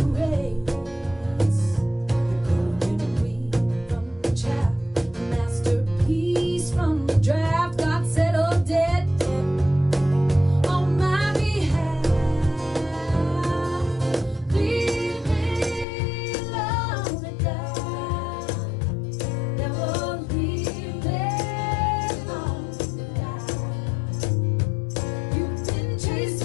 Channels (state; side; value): drops out; right; at 15.9 s